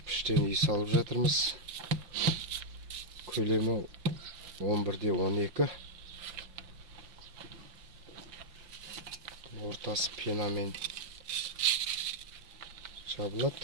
үй салып жатырмыз. Көлемі 11-12, ортасы пенамен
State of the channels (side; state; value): left; late; 5.8 ms